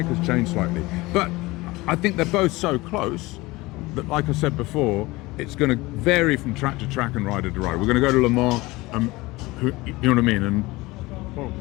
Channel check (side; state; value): right; quieter; 21.2 dB